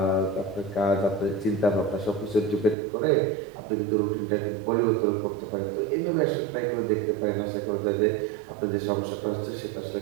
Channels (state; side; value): drops out; left; at 2.8 s